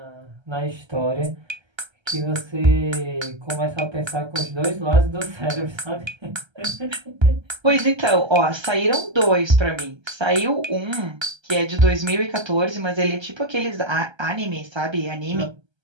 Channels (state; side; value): late; left; 1.3 ms